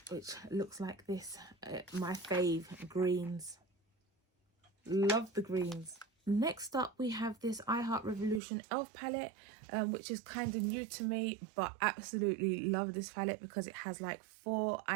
which looks like this. My fave, greens. Love the greens. Next up, we have this I Heart Revolution Elf palette, which is kind of new to me, but absolutely love this palette because it has like 4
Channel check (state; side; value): drops out; left; at 8.4 s